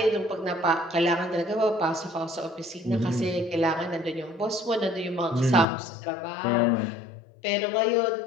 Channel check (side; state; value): right; drops out; at 5.7 s